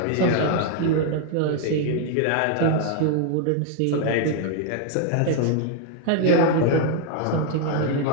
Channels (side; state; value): both; different; correlation 0.00